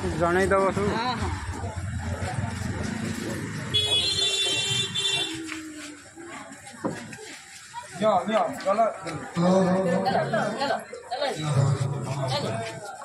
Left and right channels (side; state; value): both; identical; correlation 1.00